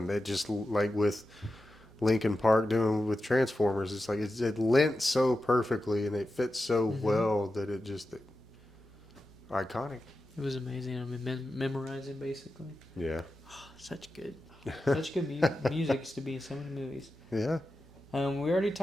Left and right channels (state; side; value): normal; both; correlation 0.91